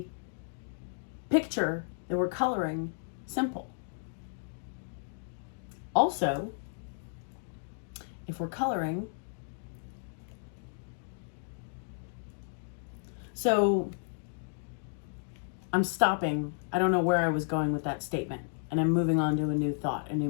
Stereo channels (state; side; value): silent; right; digital silence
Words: picture that we're coloring simple. Also, if we're coloring, so I'm stopping. I don't know where I was going with that statement, and I'm moving on to a new thought, a